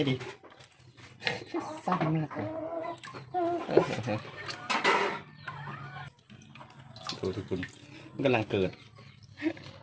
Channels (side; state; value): both; identical; correlation 1.00